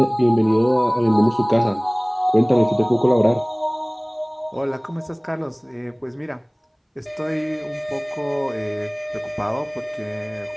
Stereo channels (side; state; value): both; identical; correlation 1.00